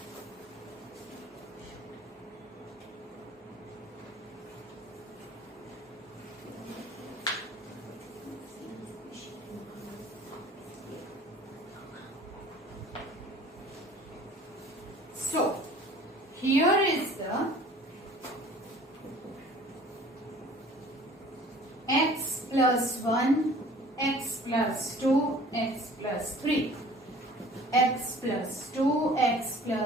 so here is the x plus 1, x plus 2, x plus 3, x plus 2, x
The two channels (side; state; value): both; normal; correlation 0.49